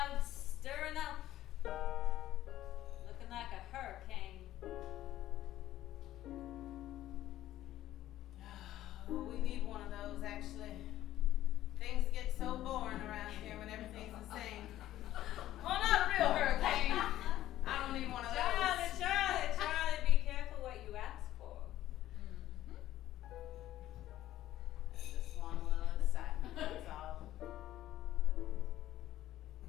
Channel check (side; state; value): right; quieter; 13.7 dB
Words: stirring up. Looking like a hurricane. Oh, we need one of those, actually. Things get so boring around here when everything's the same. Well, not a real hurricane. I don't need one of those. Charlie, be careful what you ask for. I just want a little excitement, that's all.